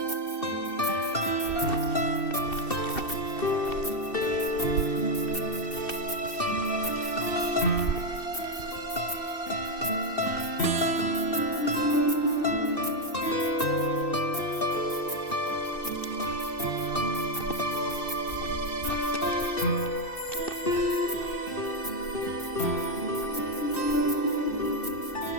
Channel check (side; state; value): right; late; 2.7 ms